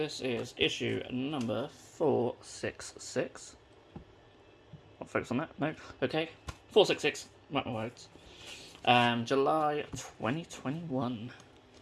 is issue number 466. I'll focus on that. No? Okay. 466. Mark my words. July 2021.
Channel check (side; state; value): both; identical; correlation 1.00